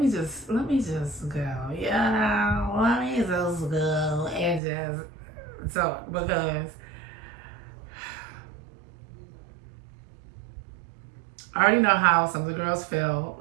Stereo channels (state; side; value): drops out; left; at 4.6 s